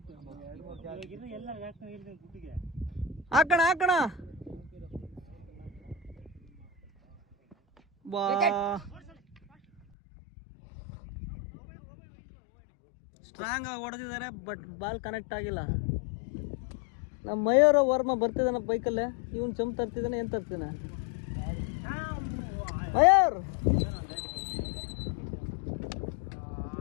ಹಾಕಣ ಬಾ. ಸ್ಟ್ರಾಂಗ್ ಆಗಿ ಹೊಡೆದಿದ್ದಾರೆ, ಬಟ್ ಬಾಲ್ ಕನೆಕ್ಟ್ ಆಗಿಲ್ಲ. ನಮ್ಮ ಮಯೂರ ವರ್ಮ ಬರ್ತಿದ್ದಾನೆ ಬೈಕಲ್ಲೇ. ಇವನ್ ಚಂಪ್ ತರ್ತಿದ್ದಾನೆ, ಏನ್ ತರ್ತೀನ ಮಯೂರ್.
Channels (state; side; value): drops out; right; at 9.8 s